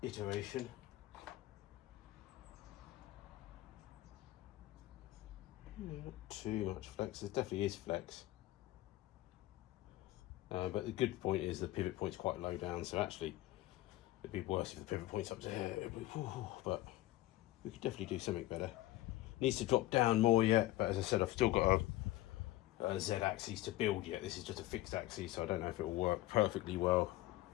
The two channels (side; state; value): right; quieter; 16.4 dB